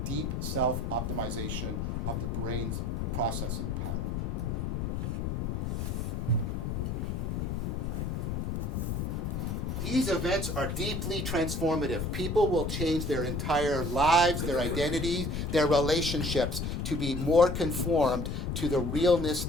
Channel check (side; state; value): left; noise; rumble, 1 dB below the sound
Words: deep self-optimization of the brain's processing power. These events are deeply transformative. People will change their entire lives, their identities, their relationships to be more conformed to the realness